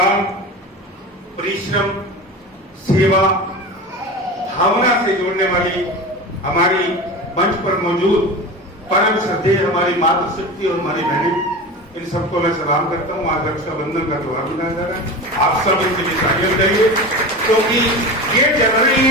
परिश्रम, सेवा, भावना से जोड़ने वाली हमारी मंच पर मौजूद परम श्रद्धेय हमारी मातृशक्ति और हमारी बहनें, इन सबको मैं सलाम करता हूँ। आज रक्षाबंधन का त्योहार मनाया जा रहा है, आप सब इनके लिए तालियां बजाइए क्योंकि ये जल रही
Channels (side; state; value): both; normal; correlation 0.29